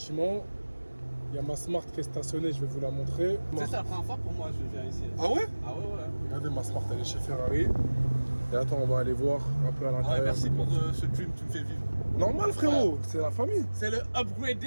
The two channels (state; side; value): inverted; both; correlation -1.00